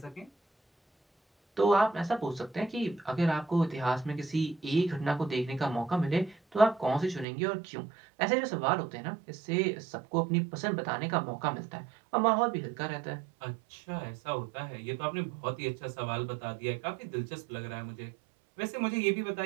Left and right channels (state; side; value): drops out; left; at 7.2 s